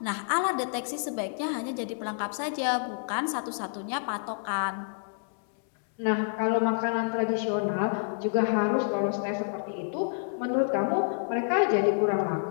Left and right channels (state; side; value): silent; right; 59 dB below the other